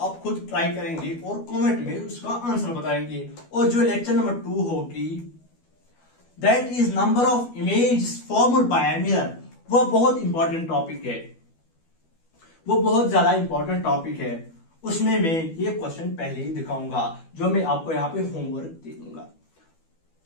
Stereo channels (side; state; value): right; late; 12 ms